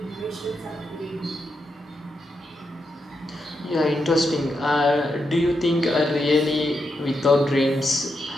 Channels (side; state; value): both; normal; correlation 0.84